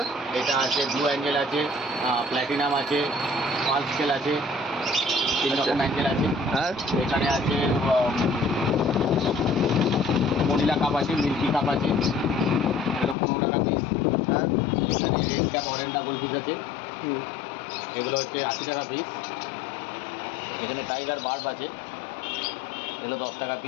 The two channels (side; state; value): right; drops out; at 13.2 s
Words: এটা আছে ব্লু অ্যাঞ্জেল আছে, প্ল্যাটিনাম আছে, পাল স্কেল আছে, 3 রকম অ্যাঞ্জেল আছে। আর এখানে আছে মনিলা কাপ আছে, মিল্কি কাপ আছে, এগুলো 15 টাকা পিস। আর এখানে রেড ক্যাপ অরেন্ডা গোলফিশ আছে, এগুলো হচ্ছে 80 টাকা পিস। এখানে টাইগার বার্ব আছে, এগুলো 10 টাকা